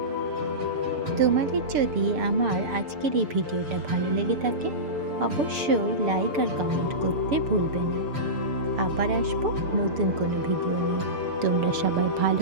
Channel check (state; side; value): late; left; 6.9 ms